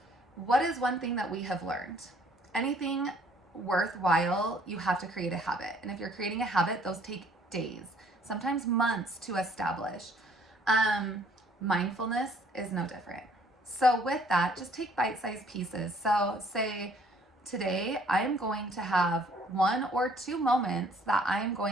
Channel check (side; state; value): both; normal; correlation 0.60